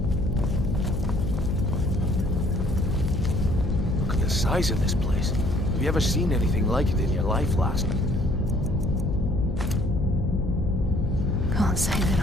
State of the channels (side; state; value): left; noise; hum, 3 dB below the sound